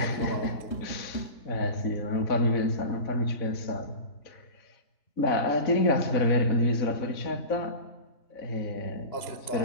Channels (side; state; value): right; late; 4.0 ms